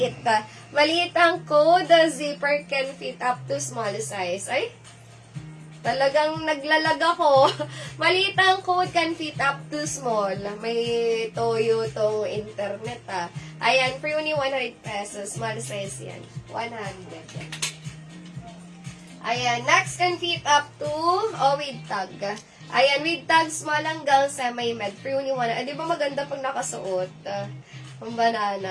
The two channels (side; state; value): both; identical; correlation 1.00